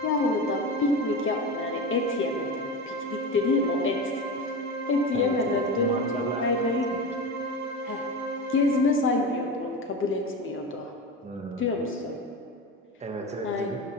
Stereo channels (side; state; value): both; normal; correlation 0.24